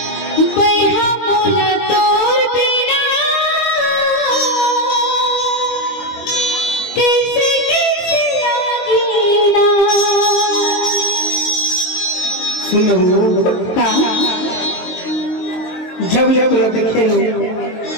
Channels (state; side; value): late; right; 23 ms